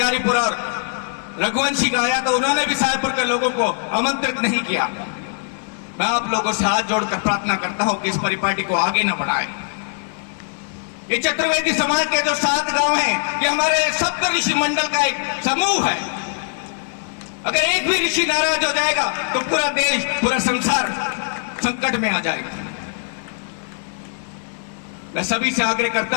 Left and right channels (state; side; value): silent; right; digital silence